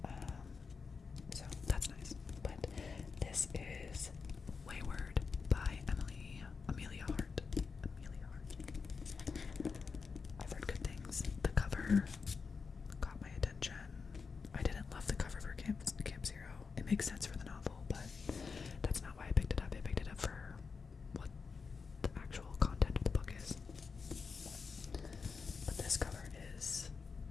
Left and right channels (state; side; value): quieter; right; 5.1 dB